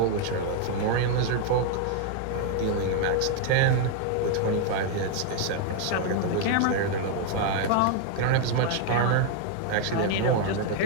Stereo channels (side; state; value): both; different; correlation 0.00